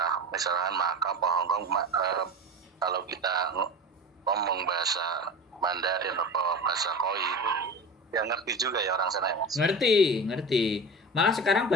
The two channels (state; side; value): normal; both; correlation 0.30